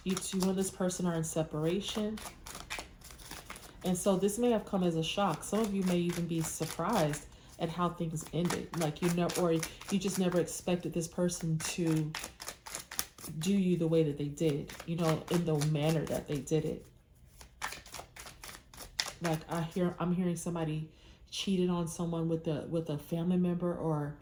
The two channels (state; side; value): identical; both; correlation 1.00